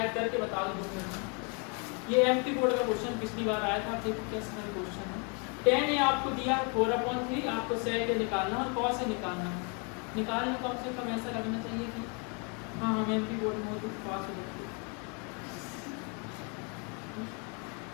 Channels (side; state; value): right; quieter; 35.5 dB